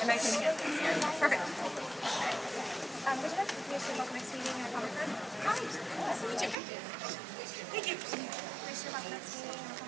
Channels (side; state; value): left; drops out; at 6.6 s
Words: And I can get this here. Perfect. Would you like to finish your next meeting and a comment card? Hi. Nice to meet you. Thank you. Finish your next meeting and a